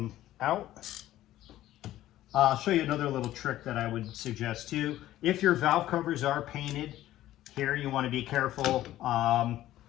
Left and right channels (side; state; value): right; quieter; 14.1 dB